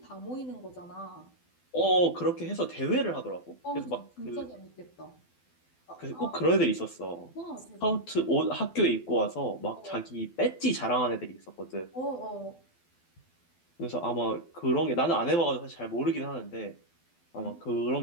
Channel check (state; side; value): late; right; 12 ms